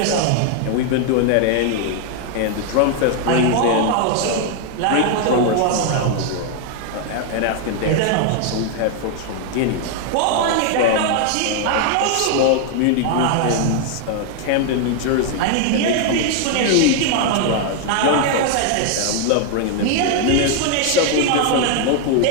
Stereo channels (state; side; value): different; both; correlation 0.00